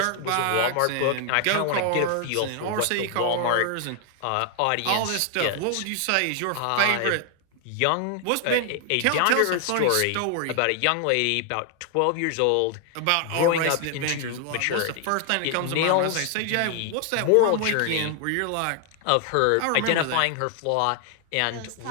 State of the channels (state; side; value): different; both; correlation 0.00